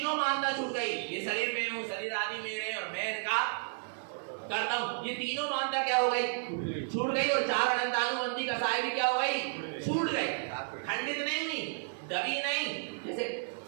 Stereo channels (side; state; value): left; silent; digital silence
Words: मानना छूट गई। ये शरीर में हूँ, शरीर आदि मेरे और मैं इनका करता हूँ, ये तीनों मानता क्या हो गई, छूट गई। और चार अनंतानुबंधी कसाई भी क्या हो गई, छूट गई, खंडित नहीं हुई, दबी नहीं। जैसे